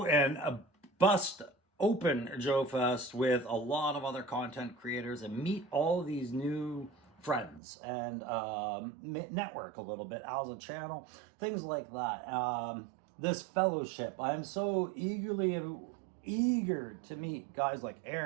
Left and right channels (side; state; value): left; drops out; at 7.6 s